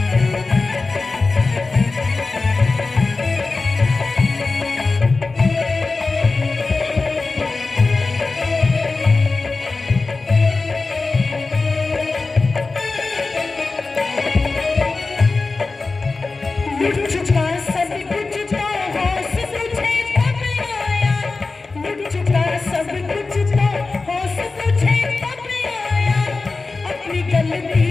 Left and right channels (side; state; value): right; quieter; 3.8 dB